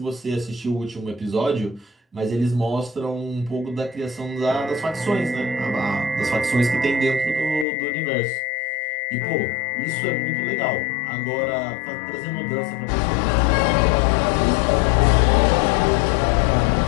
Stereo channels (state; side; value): drops out; right; at 7.7 s